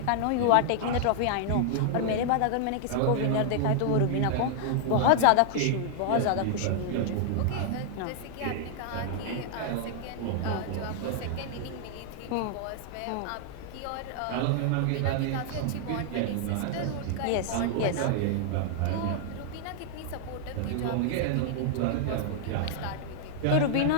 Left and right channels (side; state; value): both; different; correlation 0.00